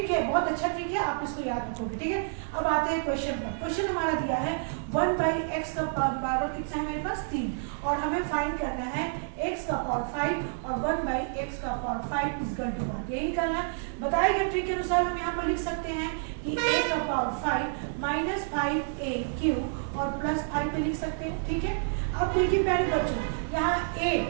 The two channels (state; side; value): silent; left; digital silence